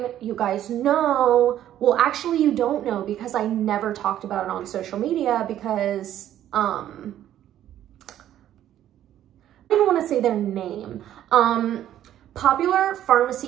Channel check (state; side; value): quieter; left; 11.8 dB